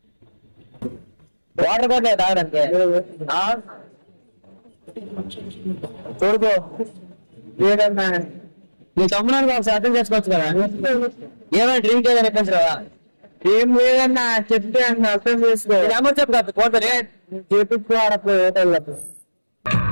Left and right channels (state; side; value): inverted; both; correlation -1.00